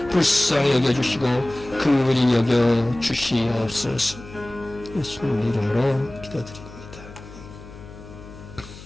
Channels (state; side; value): noise; left; hum, 17 dB below the sound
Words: 불쌍히 여겨주시고 긍휼히 여겨주시옵소서. 예수님 이름으로 기도드립니다.